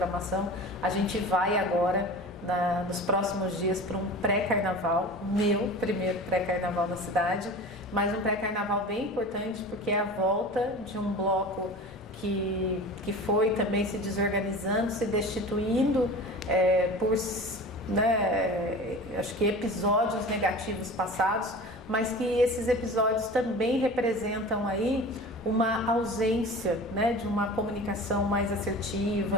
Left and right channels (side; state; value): both; normal; correlation 0.36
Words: a gente vai agora, nos próximos dias, para um pré-carnaval, meu primeiro pré-carnaval na cidade, mas um pré-carnaval bem importante porque é a volta de um bloco que foi também se desorganizando, se destituindo por... né, acho que episódios negativos passados, mas que esses episódios também representam aí uma ausência, né, de uma comunicação mais